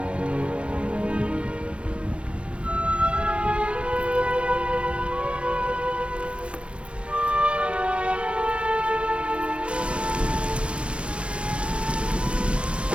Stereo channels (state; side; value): late; left; 0.059 ms